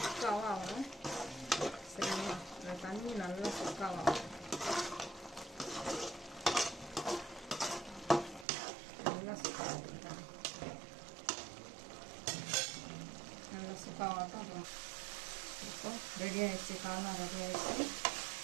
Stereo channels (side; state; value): left; drops out; at 8.5 s